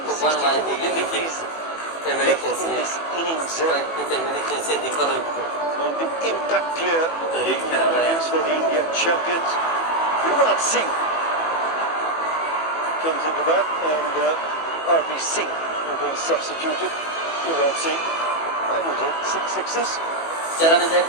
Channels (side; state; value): right; late; 18 ms